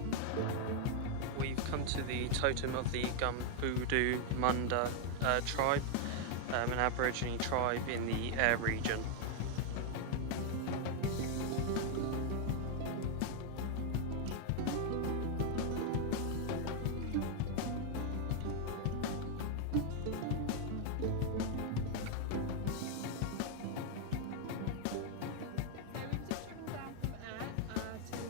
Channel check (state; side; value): different; both; correlation 0.00